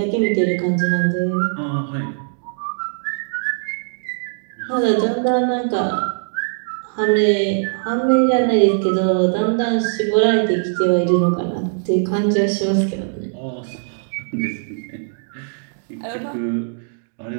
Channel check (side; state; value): left; silent; digital silence